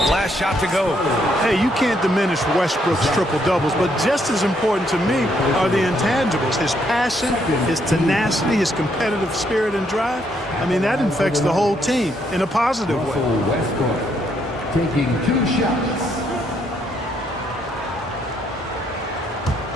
shot to go. Hey, you can't diminish Westbrook's triple-doubles, but just as important to me are the intangibles. His passion, his tenacity, his competitive spirit and drive. I mean, that infects the whole team in a positive way. Westbrook taking 2 shots.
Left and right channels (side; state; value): both; normal; correlation 0.73